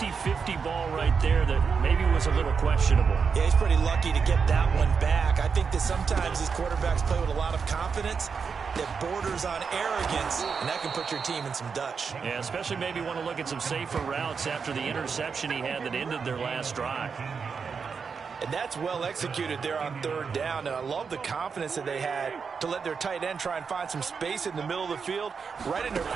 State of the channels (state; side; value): quieter; left; 5.7 dB